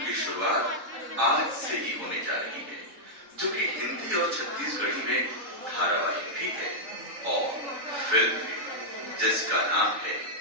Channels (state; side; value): late; left; 3.9 ms